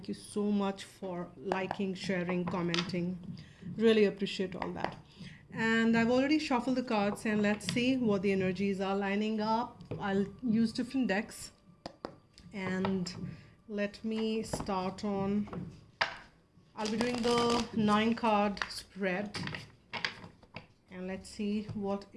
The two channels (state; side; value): identical; both; correlation 1.00